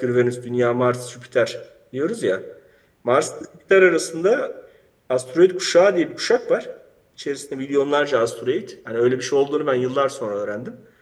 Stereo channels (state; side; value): identical; both; correlation 1.00